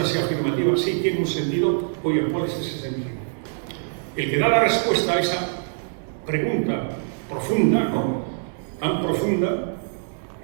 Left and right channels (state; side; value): silent; left; digital silence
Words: sea afirmativa, sí tiene un sentido. Oye, ¿cuál es ese sentido? El que da la respuesta a esa pregunta profunda, ¿no? Tan profunda,